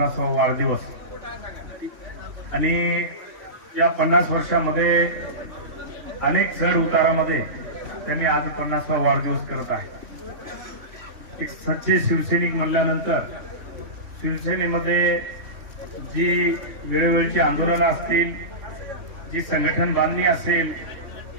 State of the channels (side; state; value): left; late; 3.1 ms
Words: वाढदिवस आणि या 50 वर्षामध्ये अनेक चढ उतारामध्ये त्यांनी आज 50वा वाढदिवस करत आहे। एक सच्चे शिवसैनिक म्हणल्यानंतर शिवसेनेमध्ये जी वेळोवेळची आंदोलनं असतील, जी संघटन बांधणी असेल,